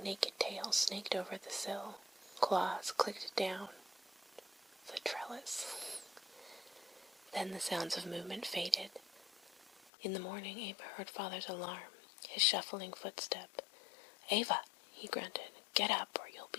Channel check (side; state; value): right; drops out; at 9.9 s